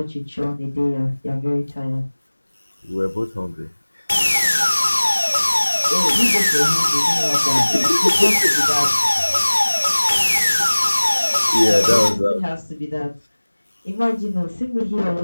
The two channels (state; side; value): inverted; both; correlation -1.00